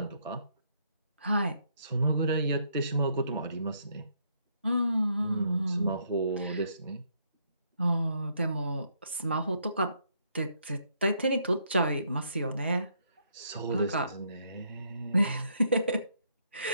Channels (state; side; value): inverted; both; correlation -0.72